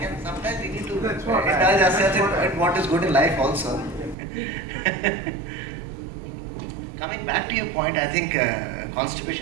And sometimes we need to indulge ourselves in what is good in life also. Coming back to your point, I think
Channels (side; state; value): left; drops out; at 4.2 s